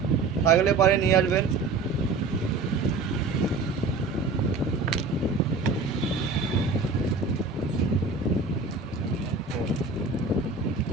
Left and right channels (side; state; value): left; quieter; 3.9 dB